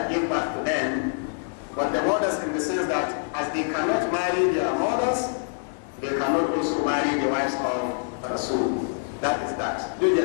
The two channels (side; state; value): right; silent; 61 dB below the other